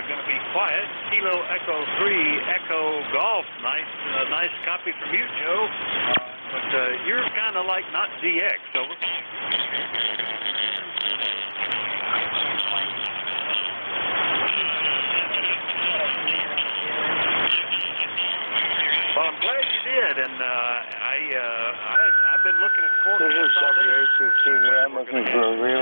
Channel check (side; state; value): both; inverted; correlation -1.00